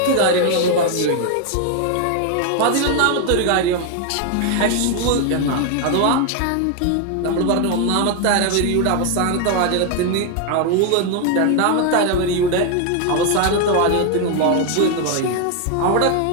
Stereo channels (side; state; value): both; different; correlation 0.01